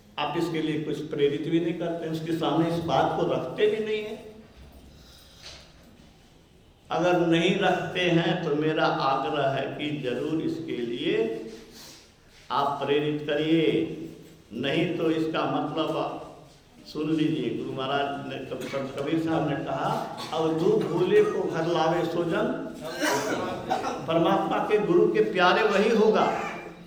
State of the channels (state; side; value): identical; both; correlation 1.00